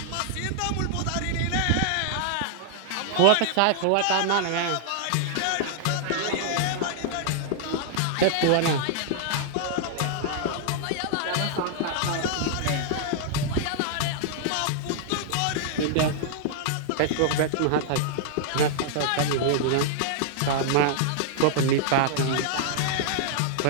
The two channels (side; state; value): both; different; correlation -0.01